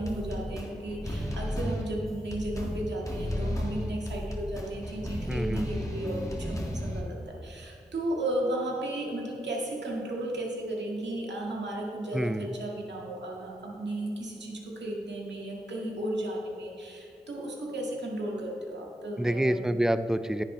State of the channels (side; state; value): both; normal; correlation 0.81